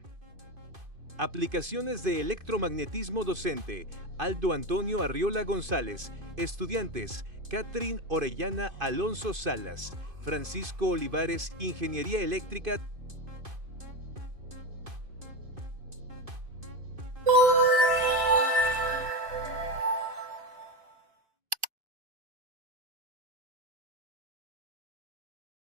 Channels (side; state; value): left; late; 2.5 ms